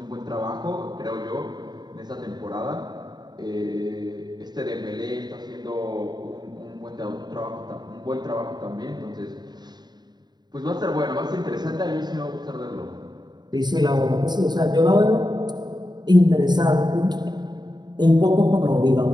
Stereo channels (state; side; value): late; left; 0.20 ms